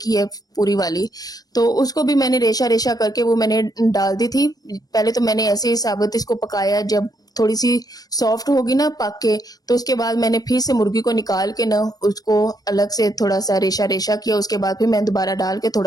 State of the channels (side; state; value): right; late; 0.18 ms